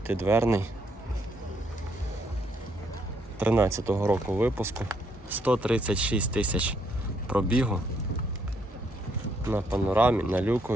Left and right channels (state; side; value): normal; both; correlation 0.72